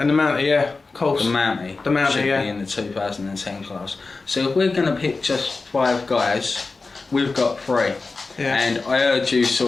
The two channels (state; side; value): quieter; right; 3.9 dB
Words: and the Mounty, yeah, of course. The Mounty should be in the 2010 class. So if we're going to pick just 5 guys, we've got 3. Yeah. And I heard you